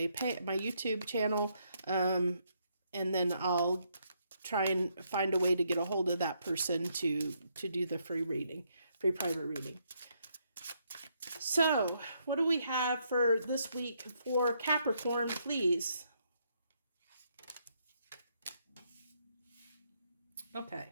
YouTube channel. And then I'll try and find a way to get a hold of that person to do the free private reading. So, what do we have for this week for Capricorn, please? Okay.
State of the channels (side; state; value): both; inverted; correlation -0.75